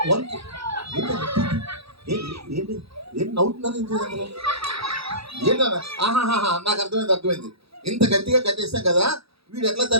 1 ఏంటి ఏంటి నవ్వుతున్నారు? అందులో ఏంటన్నా? ఆహాహా, నాకు అర్థమైంది. ఇంత గట్టిగా కట్టేస్తాం కదా, వీడు ఎట్లా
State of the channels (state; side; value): late; left; 0.77 ms